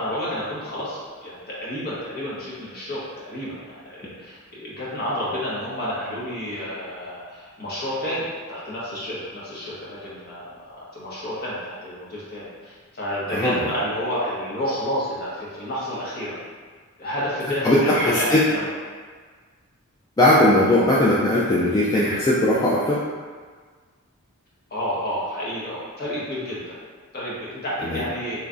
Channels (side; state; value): both; normal; correlation 0.25